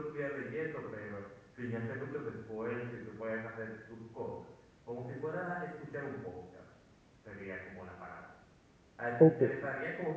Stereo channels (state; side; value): identical; both; correlation 1.00